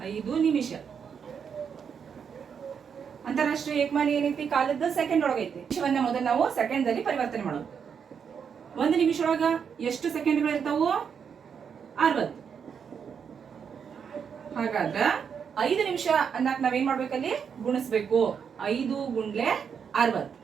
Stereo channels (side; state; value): left; quieter; 7.0 dB